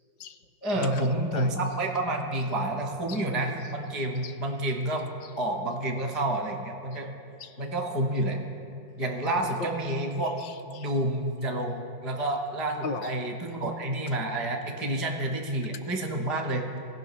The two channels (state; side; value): late; right; 5.0 ms